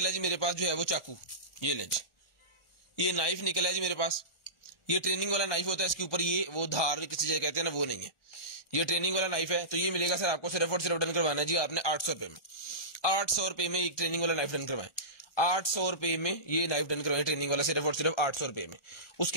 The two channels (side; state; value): right; late; 1.4 ms